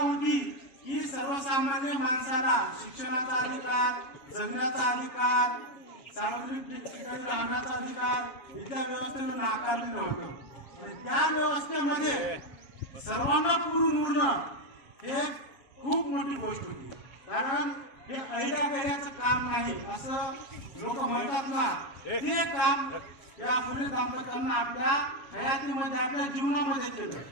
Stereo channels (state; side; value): late; right; 7.2 ms